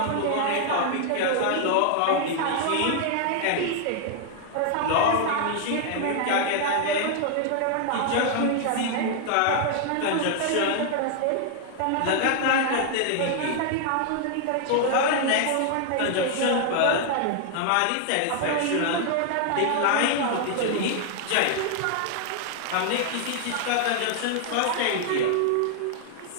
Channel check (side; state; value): both; different; correlation 0.00